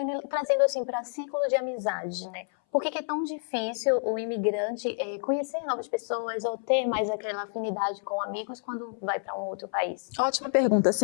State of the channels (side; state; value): right; silent; 59 dB below the other